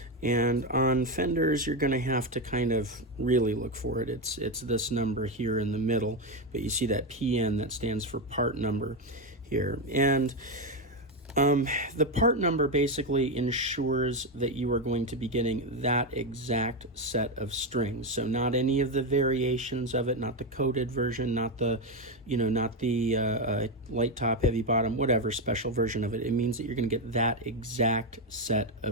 And on Fenders you're going to have to kind of really look for it. It's this number here in the middle, but you see that PN that stands for part number here. And the part number basically ensures that you are going to be getting that exact set of strings. So not any of the variations of it, not the coated version, not the, light top, heavy bottom, whatever special version of it. It means that you're going to get that exact set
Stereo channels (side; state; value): both; normal; correlation 0.09